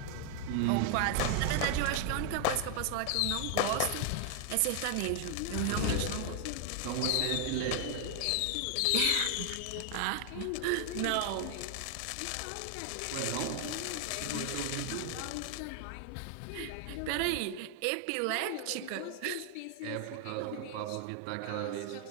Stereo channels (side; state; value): both; different; correlation 0.00